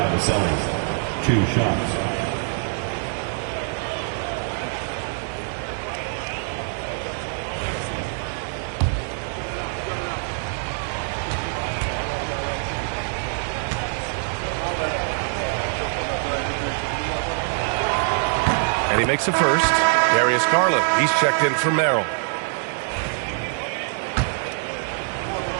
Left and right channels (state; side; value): silent; left; 57 dB below the other